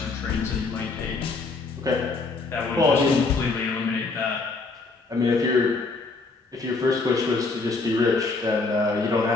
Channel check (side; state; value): right; quieter; 3.9 dB